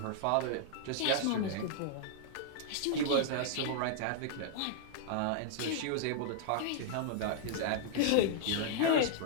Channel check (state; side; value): different; both; correlation -0.01